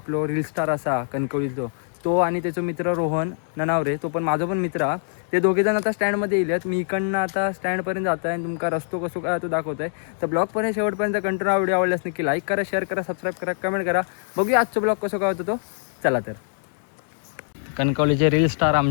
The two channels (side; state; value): right; silent; digital silence